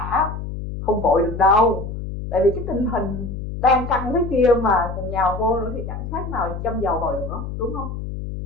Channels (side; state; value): left; noise; hum, 7 dB below the sound